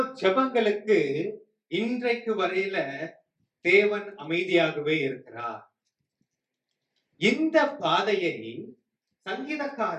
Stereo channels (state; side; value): identical; both; correlation 1.00